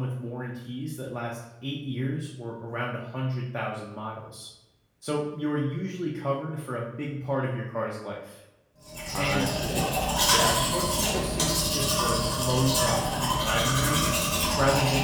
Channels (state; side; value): identical; both; correlation 1.00